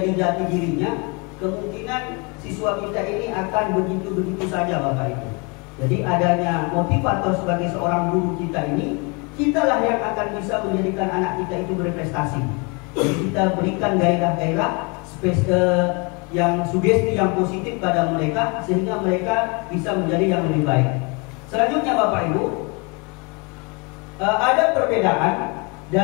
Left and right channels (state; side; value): quieter; right; 31.2 dB